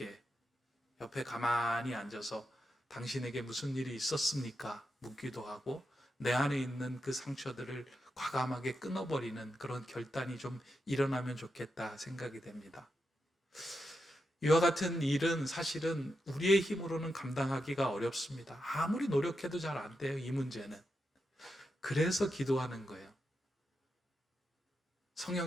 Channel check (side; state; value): both; normal; correlation 0.86